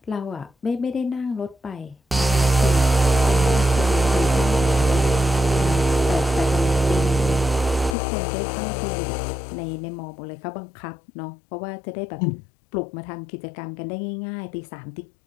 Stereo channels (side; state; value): right; drops out; at 8.0 s